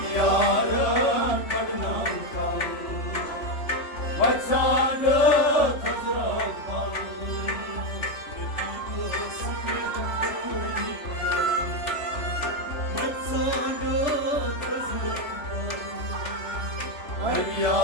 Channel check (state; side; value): late; right; 3.3 ms